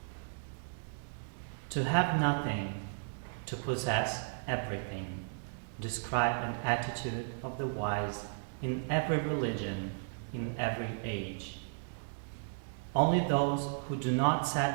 To have nothing, to possess everything, describe an attitude of the wise in every religion, in every age. Only those who do not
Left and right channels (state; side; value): silent; left; digital silence